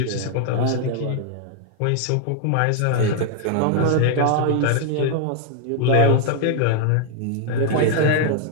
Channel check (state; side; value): different; both; correlation 0.00